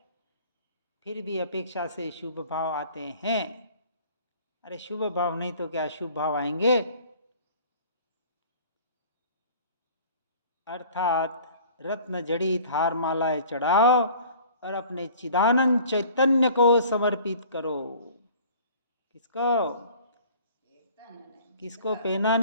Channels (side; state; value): both; inverted; correlation -0.49